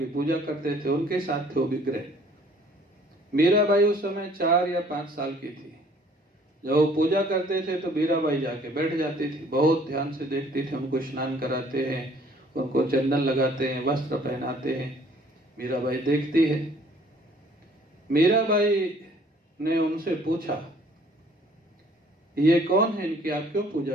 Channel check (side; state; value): both; normal; correlation 0.57